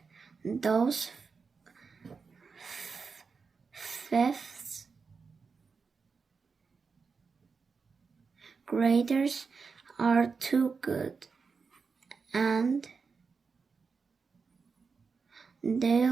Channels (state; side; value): quieter; left; 5.1 dB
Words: Those fifth graders are too good, and